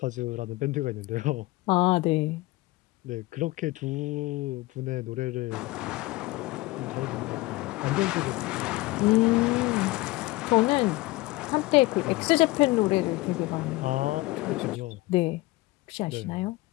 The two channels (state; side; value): quieter; right; 20.4 dB